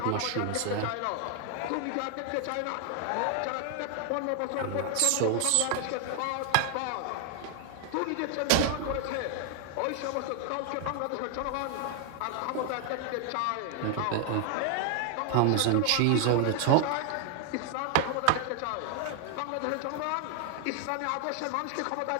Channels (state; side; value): different; both; correlation 0.00